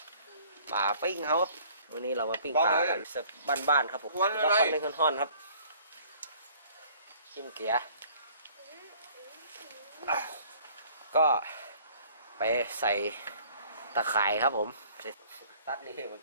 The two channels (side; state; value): both; inverted; correlation -0.54